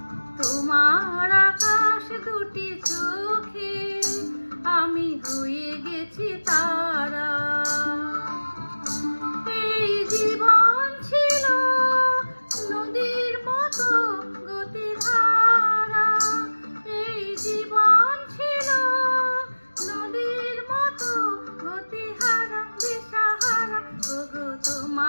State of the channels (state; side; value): inverted; both; correlation -1.00